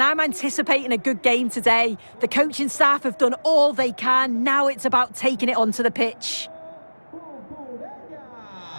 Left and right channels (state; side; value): inverted; both; correlation -1.00